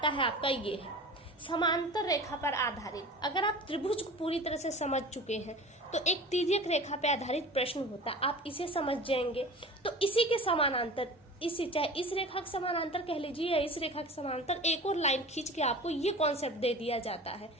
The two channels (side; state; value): both; normal; correlation 0.37